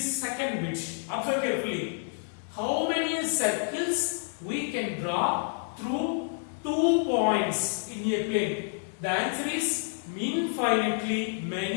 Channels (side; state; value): right; silent; 59 dB below the other